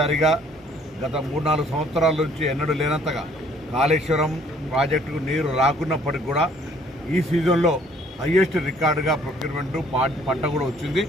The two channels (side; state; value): both; normal; correlation 0.60